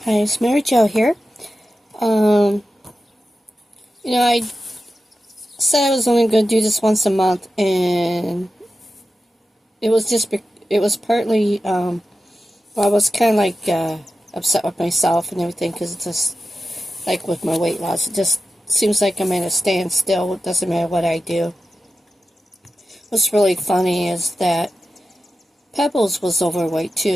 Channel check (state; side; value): normal; both; correlation 0.92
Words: Hi, it's Mary Jo here. Um, I said I was only going to do this once a month, and it was partly, well, I was kind of like upset with myself and everything because it's just like with my weight loss, it just seems like I'm at a standstill. It doesn't matter what I do. What's really funny is that Pebbles was overweight